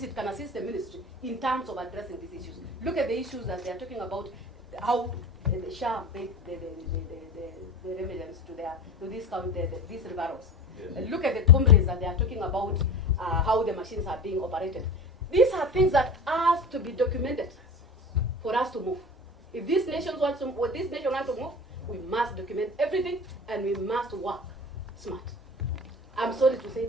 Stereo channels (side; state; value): both; normal; correlation 0.33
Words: it can assist the ministry in terms of addressing these issues. Look at the issues that they are talking about, how the SHA paid the remedies to these referrals. Yes. Look at the complaints that they are talking about, how the machines are being operated. These are things that have to be documented for us to move. If this nation wants to move, we must document everything, and we must work smart. I'm sorry to say